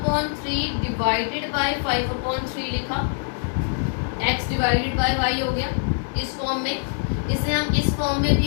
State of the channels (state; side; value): silent; right; digital silence